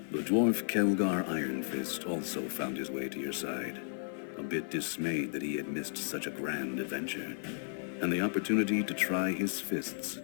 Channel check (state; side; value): silent; right; digital silence